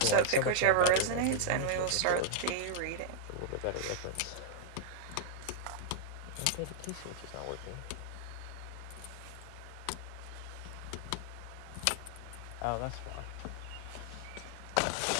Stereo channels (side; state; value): both; different; correlation -0.01